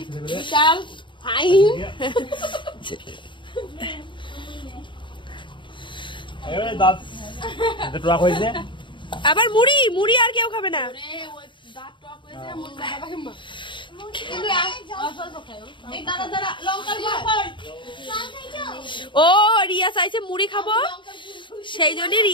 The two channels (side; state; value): right; late; 0.23 ms